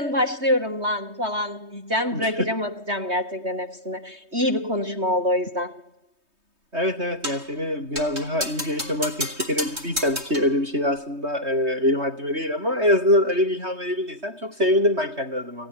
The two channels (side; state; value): left; late; 3.2 ms